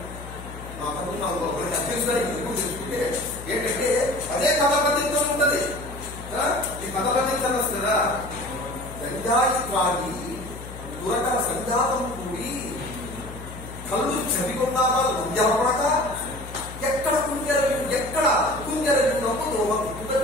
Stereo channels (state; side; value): noise; left; hum, 13 dB below the sound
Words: గంజాయి త్రాగి దురకల సంజాతం కూడి కళ్ళు చదివున్నారా లంజాపడక ఎక్కడ కుంజరగినప్పు దోమ కుట్టుగా